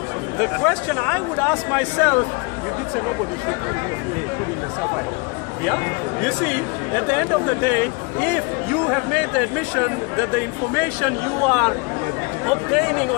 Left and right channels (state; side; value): quieter; right; 29.5 dB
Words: The question I would ask myself, you did say nobody should put in yourself, I hope. Yeah? You see, at the end of the day, if you have made the admission that the information you are obtaining